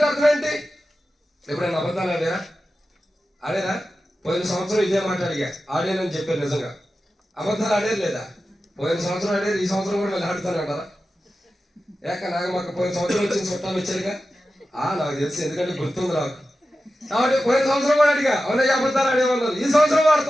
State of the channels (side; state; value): both; normal; correlation 0.93